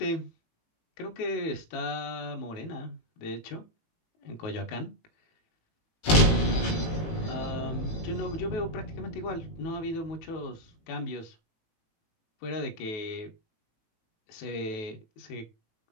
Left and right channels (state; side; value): late; right; 18 ms